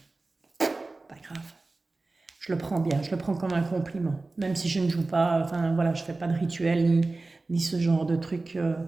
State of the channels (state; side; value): quieter; left; 3.3 dB